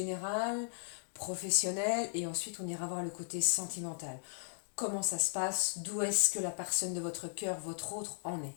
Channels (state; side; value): silent; right; digital silence